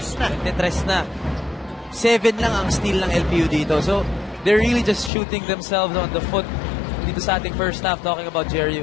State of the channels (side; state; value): right; drops out; at 5.1 s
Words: na. 7 lang ang steal ng LPU dito. So, they're really just shooting themselves on the foot dito sa ating first half talking about JRU.